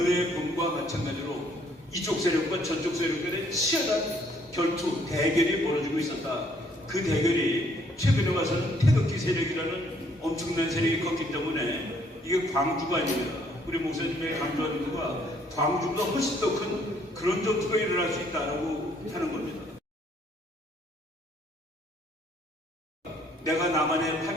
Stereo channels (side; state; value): both; normal; correlation 0.65